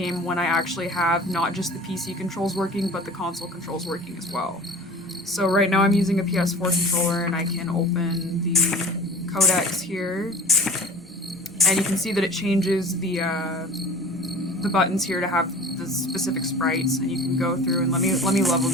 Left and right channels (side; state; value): both; normal; correlation 0.41